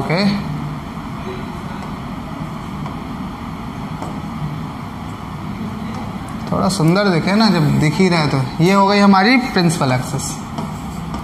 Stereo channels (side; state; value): both; identical; correlation 1.00